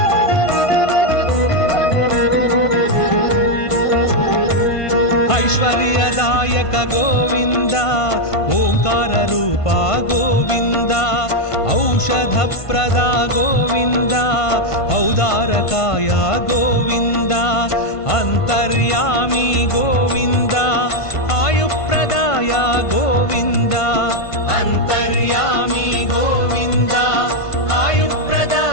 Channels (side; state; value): right; late; 1.5 ms